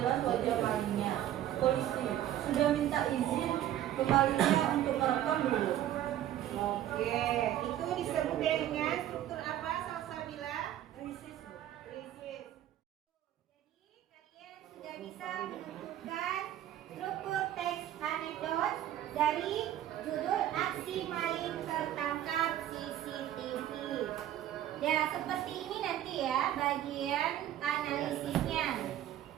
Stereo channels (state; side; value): quieter; left; 12.2 dB